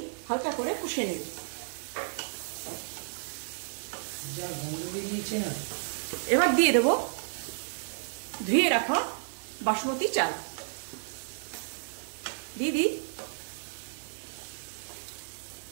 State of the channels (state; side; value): silent; left; digital silence